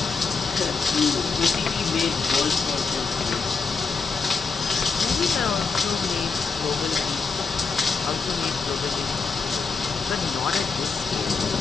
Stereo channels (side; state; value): right; quieter; 4.9 dB